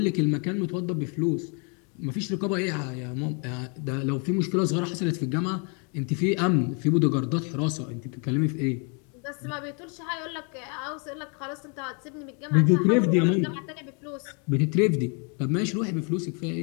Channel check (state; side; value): quieter; right; 36.8 dB